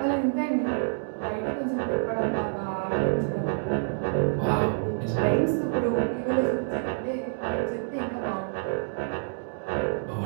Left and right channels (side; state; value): left; silent; digital silence